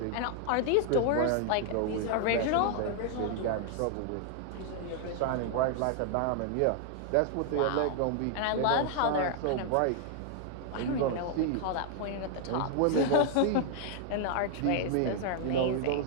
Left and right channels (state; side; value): different; both; correlation 0.00